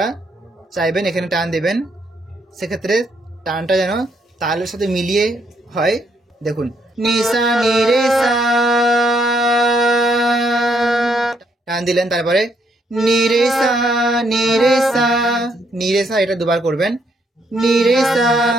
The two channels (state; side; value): normal; both; correlation 0.73